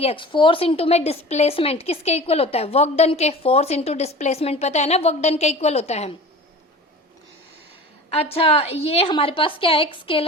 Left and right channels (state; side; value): normal; both; correlation 0.38